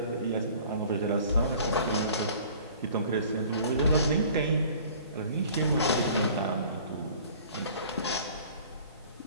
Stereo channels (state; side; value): inverted; both; correlation -0.49